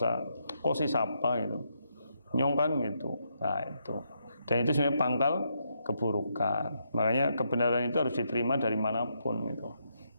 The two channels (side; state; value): both; inverted; correlation -0.79